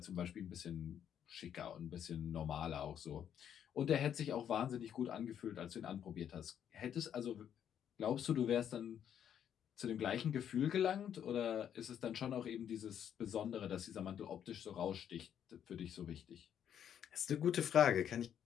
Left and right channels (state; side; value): quieter; right; 9.3 dB